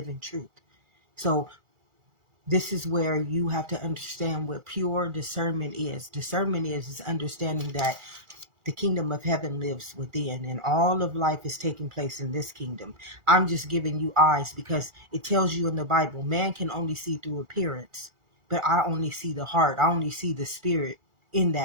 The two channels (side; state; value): left; late; 2.3 ms